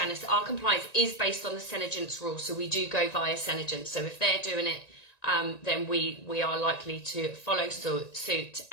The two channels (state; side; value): late; right; 1.9 ms